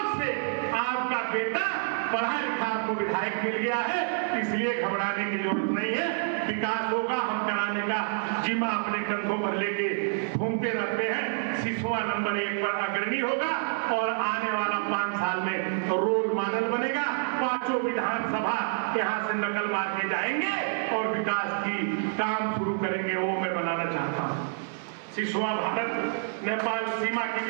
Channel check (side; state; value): left; silent; 59 dB below the other